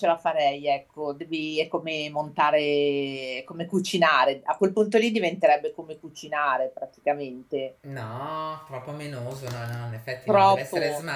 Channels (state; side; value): identical; both; correlation 1.00